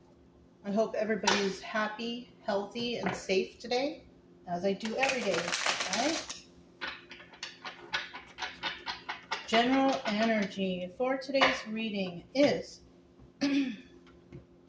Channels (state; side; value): identical; both; correlation 1.00